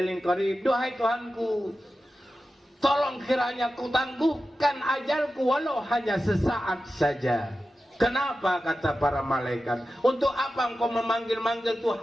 qarib, duhai Tuhanku, tolong kiranya ku tangguhkan ajalku walau hanya sesaat saja. Kenapa, kata para malaikat? Untuk apa engkau memanggil-manggil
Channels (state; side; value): normal; both; correlation 0.93